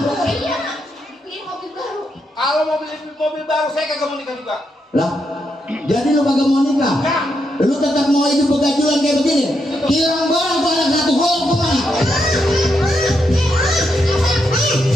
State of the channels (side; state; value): both; normal; correlation 0.81